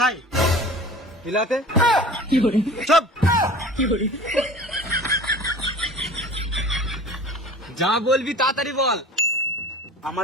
হিলাতে। সব যা বলবি তাড়াতাড়ি বল।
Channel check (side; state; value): both; normal; correlation 0.41